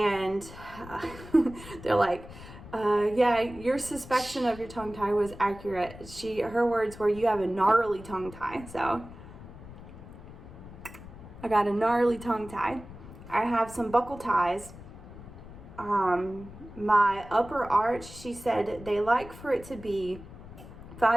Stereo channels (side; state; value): left; noise; rumble, 16 dB below the sound